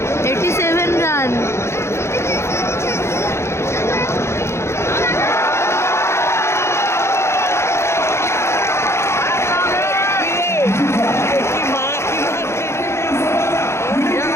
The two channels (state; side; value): late; right; 0.13 ms